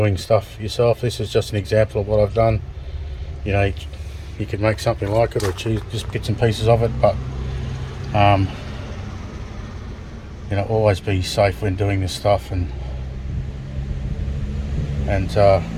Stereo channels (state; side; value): identical; both; correlation 1.00